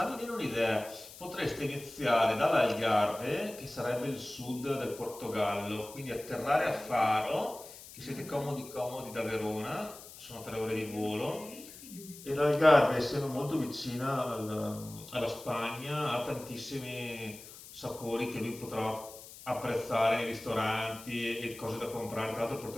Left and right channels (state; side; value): noise; left; hiss, 16 dB below the sound